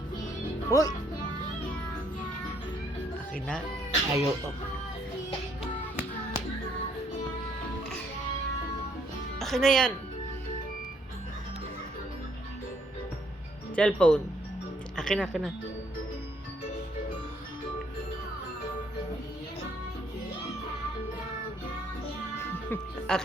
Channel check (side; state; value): both; normal; correlation 0.68